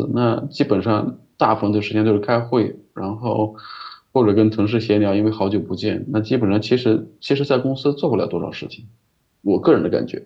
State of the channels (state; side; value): identical; both; correlation 1.00